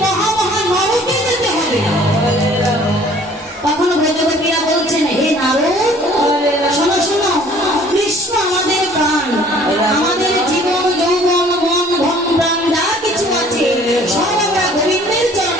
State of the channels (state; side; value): normal; both; correlation 0.54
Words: মহা মহা নরকে যেতে হবে। তখন ব্রজগোপীরা বলছেন, হে নারদ, শোনো শোনো, কৃষ্ণ আমাদের প্রাণ, আমাদের জীবন যৌবন মন ধন প্রাণ যা কিছু আছে সব আমরা গোবিন্দের